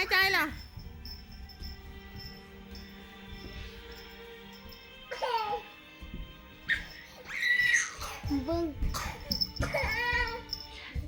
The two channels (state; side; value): identical; both; correlation 1.00